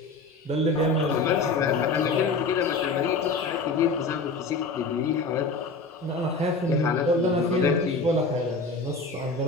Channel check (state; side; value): quieter; right; 3.6 dB